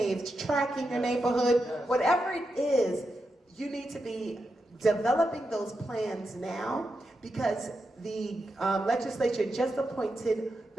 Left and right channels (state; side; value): normal; both; correlation 0.87